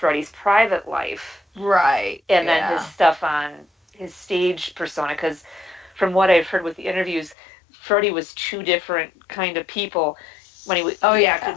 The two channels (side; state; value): right; drops out; at 7.4 s